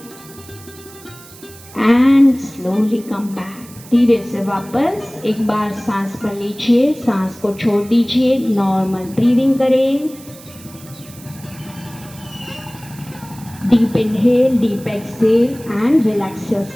एंड स्लोली कम बैक, धीरे से वापस एक बार सांस भर लीजिए, सांस को छोड़ दीजिए, नॉर्मल ब्रीदिंग करें। Deep inhale, deep exhale and relax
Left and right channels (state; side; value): noise; right; hiss, 20 dB below the sound